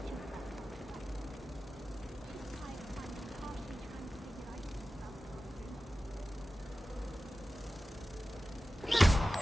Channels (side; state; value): both; normal; correlation 0.95